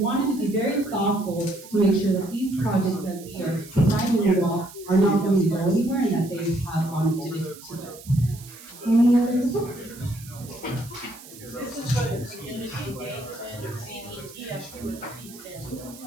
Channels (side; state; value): right; noise; hiss, 18 dB below the sound